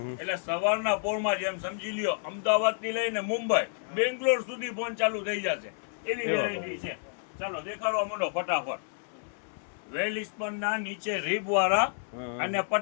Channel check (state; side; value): silent; right; 58 dB below the other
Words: એટલે સવારના પોરમાં જેમ સમજી લ્યો અમદાવાદ થી લઈને મુંબઈ બેંગ્લોર સુધી ફોન ચાલુ થઈ જશે એવી એવા વેરાયટી છે ચાલો દેખાડવા માંડો ફટાફટ વેલિસ્પન ના નીચે રીબ વાળા હમ. અને